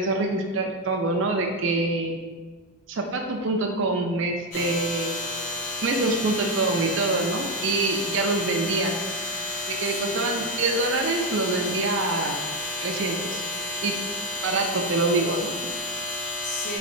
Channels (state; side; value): normal; both; correlation 0.09